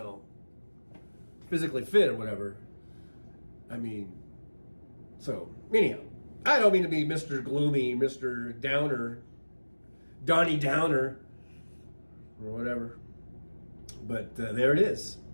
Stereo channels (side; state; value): both; inverted; correlation -1.00